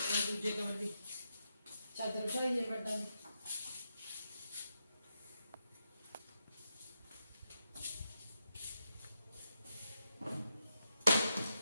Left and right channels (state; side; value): inverted; both; correlation -0.85